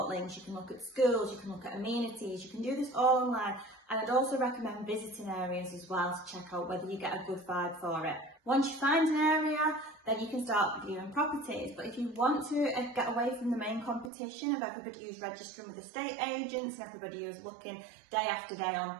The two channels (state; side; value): drops out; left; at 14.1 s